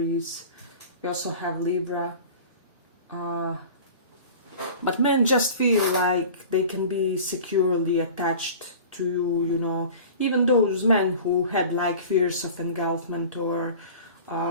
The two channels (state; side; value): inverted; both; correlation -0.40